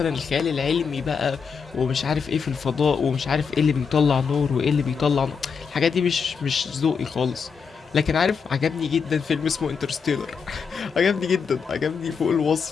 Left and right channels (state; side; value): quieter; right; 5.9 dB